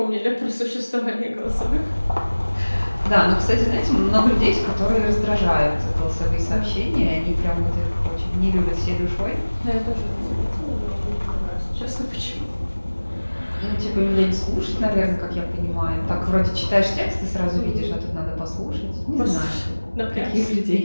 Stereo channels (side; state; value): both; inverted; correlation -1.00